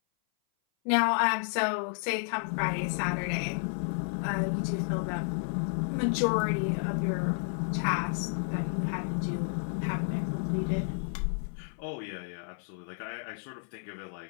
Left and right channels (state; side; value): silent; right; 57 dB below the other